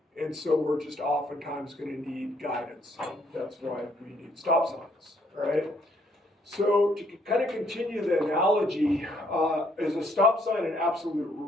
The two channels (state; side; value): normal; both; correlation 0.68